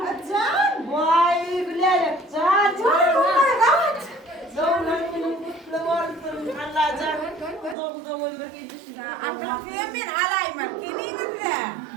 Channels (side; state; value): left; drops out; at 7.8 s